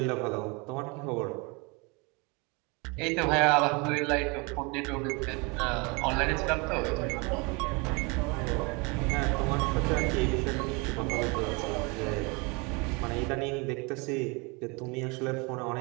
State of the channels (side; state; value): left; quieter; 29.1 dB